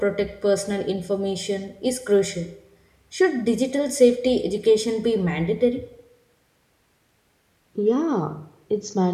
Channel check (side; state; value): both; identical; correlation 1.00